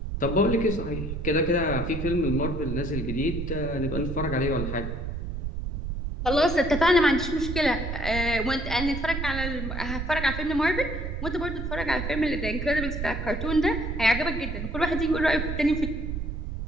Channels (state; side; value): noise; right; rumble, 4 dB below the sound